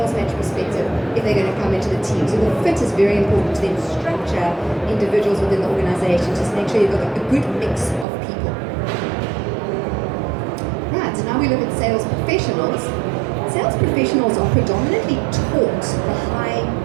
match perspective if they're going to come into the team. So the fit is very important to then structure individuals within the organization, just make sure you've got a good mix of people. Right, so now we look at sales professionals. Sales professionals are predominantly taught the high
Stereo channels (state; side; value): drops out; left; at 8.1 s